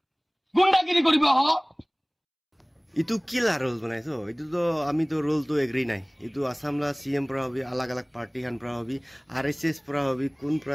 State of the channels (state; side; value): identical; both; correlation 1.00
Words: গুন্ডাগিৰি কৰিব হ इतु किला रोल बनाइছো इतु तो आमी तो रोल तो एग्री নাই इतु आसामला सीएम পৰা হবি अलग अलग पार्टी খান পৰা হবি आरएसएस পৰা হবি কোন পৰা